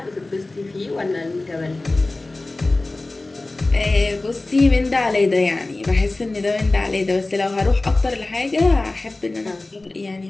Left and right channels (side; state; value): right; quieter; 3.0 dB